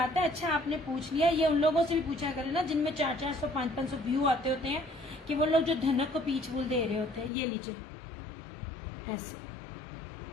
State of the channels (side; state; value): right; drops out; at 7.3 s